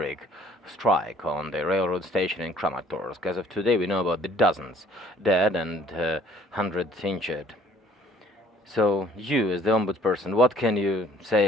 strike on the railroad station in Kramatorsk. As of today, we know about the dozens dead and hundreds injured. So, you, as the ombudsperson, what can you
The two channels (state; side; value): normal; both; correlation 0.57